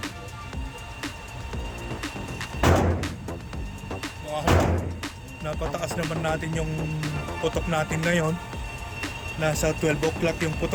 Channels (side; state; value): both; identical; correlation 1.00